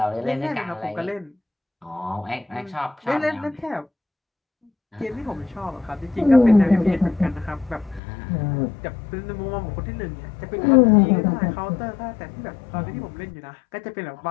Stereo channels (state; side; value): drops out; right; at 8.0 s